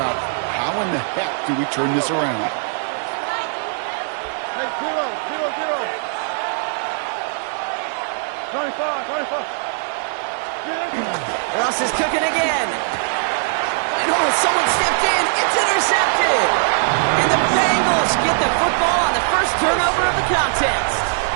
how in the heck do we turn this around. Hey, 0, 0, 0. 25. Ross is cooking again. And someone stepped in. It's intercepted. And the Bengals get the football on the first turnover of the contest.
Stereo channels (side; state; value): left; silent; digital silence